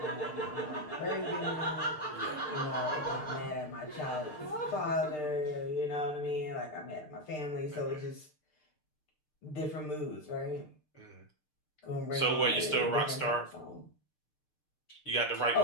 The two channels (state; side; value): late; right; 6.6 ms